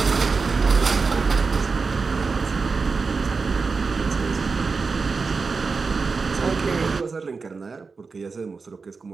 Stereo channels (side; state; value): left; quieter; 4.6 dB